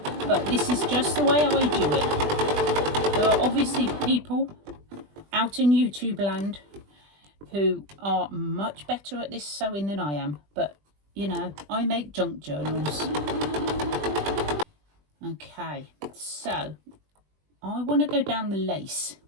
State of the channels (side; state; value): left; late; 20 ms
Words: but this is just the way I do it. There are obviously people out in YouTube land who are much better at this sewing than I am, but you know, I make junk journals. Okay, so I want to go down the lace,